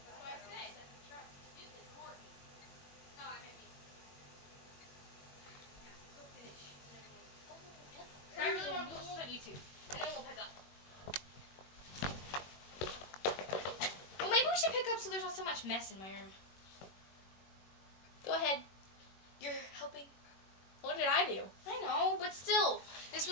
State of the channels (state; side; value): late; right; 21 ms